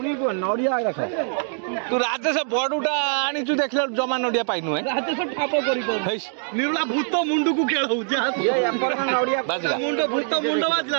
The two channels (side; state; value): left; silent; 63 dB below the other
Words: को नड़िया रखा तू राजेश बड़ुटा आनी चु देखले जमा नड़िया पाइनु है राजेश ठाप करी निरुला भूत मुंडू को खेल हो जा ये एपर नड़िया बाजला मुंडो भूत मुंडो बाजला